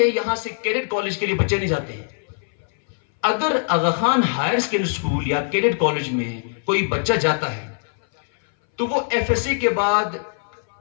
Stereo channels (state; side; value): silent; right; 60 dB below the other